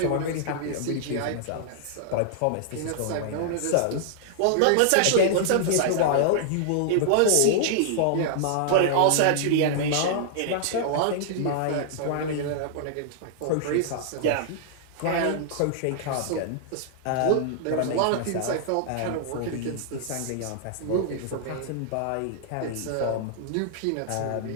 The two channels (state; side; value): different; both; correlation -0.01